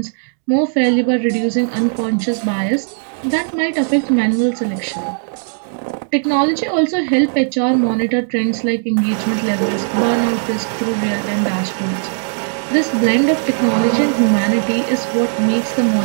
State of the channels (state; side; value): silent; left; 68 dB below the other